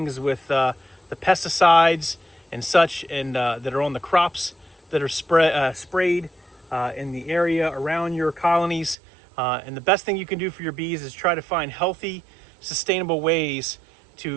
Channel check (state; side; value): drops out; left; at 9.0 s